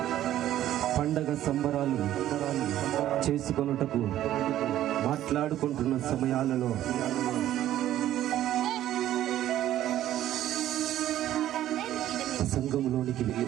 పండగ సంబరాలు చేసుకొనుటకు మాట్లాడుకుంటున్న సమయాలలో సంఘములోనికి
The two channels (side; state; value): left; quieter; 12.8 dB